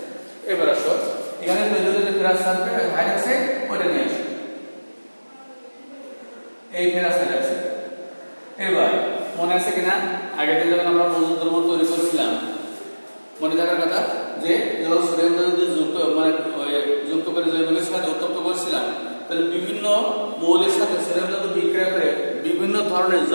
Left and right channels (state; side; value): inverted; both; correlation -1.00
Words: এবার আসো এখানে তৈরি হতে ফেরাস সালফেট হাইড্রোক্সাইড ওটা নিয়ে আসো, এই ফেরাস হাইড্রোক্সাইড। এবার মনে আছে কিনা আগের দিন যখন আমরা মজুদ দ্রব্য তৈরি করেছিলাম মনে থাকার কথা যে যখন সোডিয়াম যদি যুক্ত করে জৈবিকের সাথে উত্তপ্ত করেছিলাম তাহলে বিভিন্ন মৌলের সাথে সোডিয়াম ধাতু বিক্রিয়া করে বিভিন্ন ধরনের